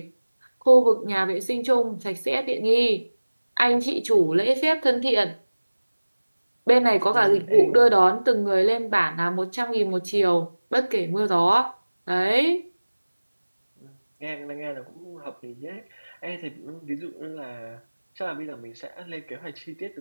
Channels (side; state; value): both; inverted; correlation -1.00